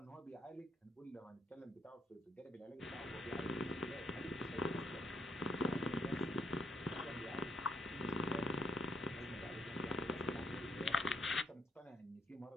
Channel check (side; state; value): both; normal; correlation 0.75